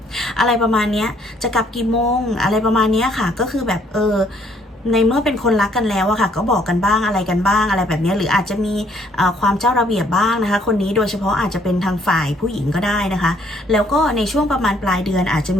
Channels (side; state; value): both; normal; correlation 0.65